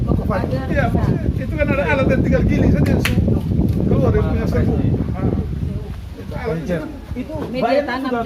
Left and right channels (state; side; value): identical; both; correlation 1.00